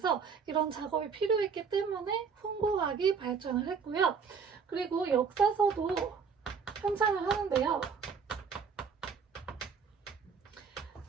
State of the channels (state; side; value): quieter; left; 5.9 dB